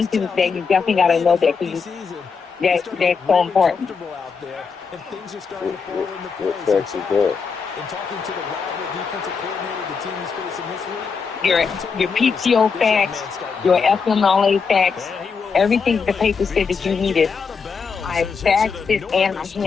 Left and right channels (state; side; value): quieter; right; 5.5 dB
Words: to. You definitely gotta know that because that's so important. Out there, and things are starting to fall into What place. facts is that? And talking to the rival defensive coordinator the team is facing this week, Your PTO fax, your FMLA fax, everything the paper said that you needed. I faxed it and I